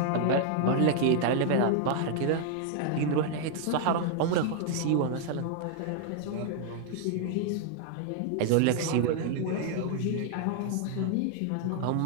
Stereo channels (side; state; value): both; different; correlation 0.00